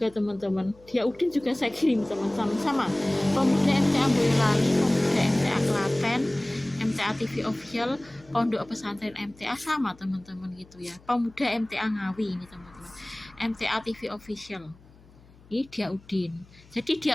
teman-teman, Dia Udin juga saya kirim teman-teman, sama Pemuda MTA Boyolali, Pemuda MTA Klaten, MTA TV official, Pondok Pesantren MTA, sama teman-teman gitu ya. Pemuda MTA Ngawi ini teman-teman, MTA TV official. Ini Dia Udin. Jadi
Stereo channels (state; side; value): noise; left; hum, 26 dB below the sound